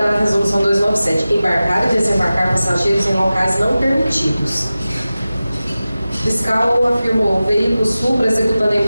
Resolução 297, embarcar e desembarcar passageiros em locais não permitidos. O fiscal afirmou o veículo supra executando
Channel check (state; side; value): inverted; both; correlation -0.96